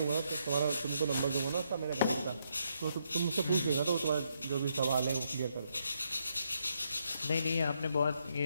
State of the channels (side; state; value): both; inverted; correlation -0.77